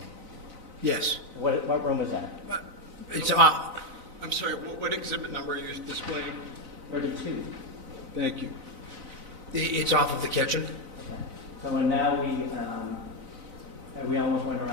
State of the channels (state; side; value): late; left; 4.0 ms